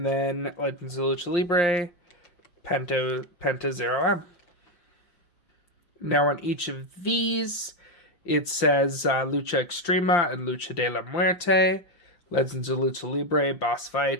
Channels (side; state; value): right; late; 5.6 ms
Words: then Legends of Lucha Libre, Penta 0M. Now on each of these, it says Lucha Extrema and Lucha de la Muerte. Legends of Lucha Libre,